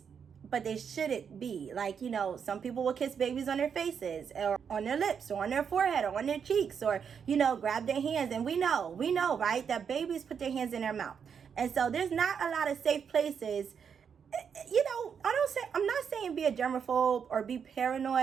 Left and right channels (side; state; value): left; quieter; 7.0 dB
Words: but they shouldn't be. Like, some people will kiss babies on their faces or on their lips or on their forehead or on their cheeks or, grab their hands. And we know, right, that babies put their hands in their mouth. And so there's not a lot of safe places. I'm not saying be a germaphobe or be